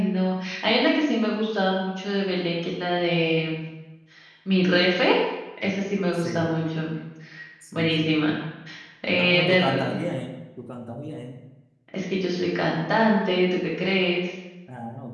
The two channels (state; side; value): identical; both; correlation 1.00